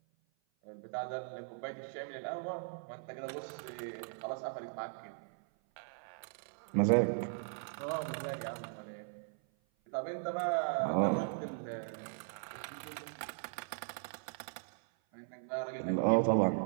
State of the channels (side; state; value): left; silent; 52 dB below the other